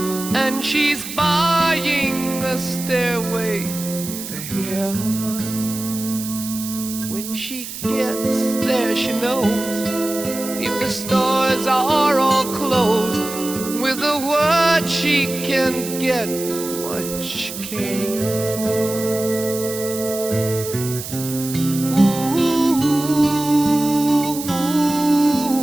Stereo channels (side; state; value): right; noise; hiss, 9 dB below the sound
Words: and she's buying a stairway to heaven. When she gets there, she knows if the stores are all closed, with a word she can get what she came for. Ooh,